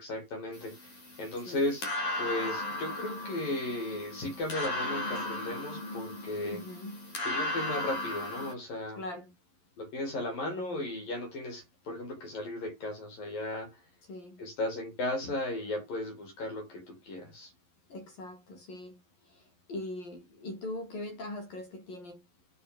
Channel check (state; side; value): late; right; 11 ms